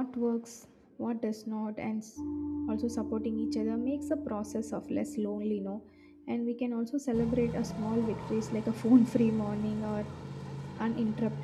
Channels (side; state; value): both; identical; correlation 1.00